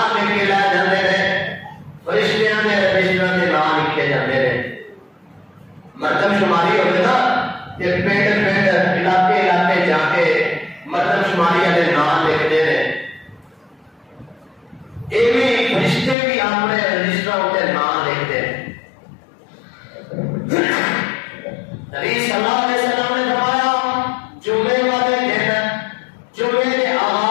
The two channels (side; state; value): right; drops out; at 16.2 s